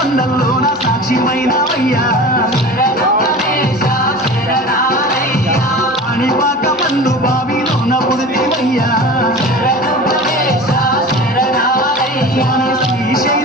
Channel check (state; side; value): normal; both; correlation 0.36